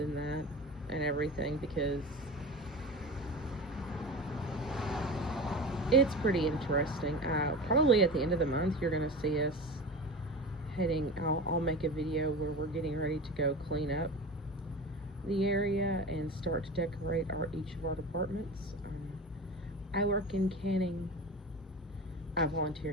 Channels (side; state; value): both; normal; correlation 0.30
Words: that and everything, because it's pretty interesting. Probably at the end of the month, you're going to see us heading. I'll make a video where we're getting ready to go clean up the area and start to decorate each of our departments. I work in canning. I volunteer